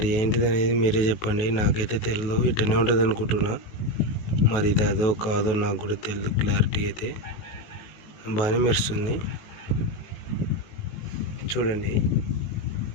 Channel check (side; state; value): right; late; 19 ms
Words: ఏంటిది అనేది మీరే చెప్పండి. నాకైతే తెలియదు, ఇట్టనే ఉంటుంది అనుకుంటున్నా. మరి ఇది అదో కాదో నాకు కూడా తెలియదు. క్లారిటీ అయితే బాగానే మెరుస్తుంది. చూడండి,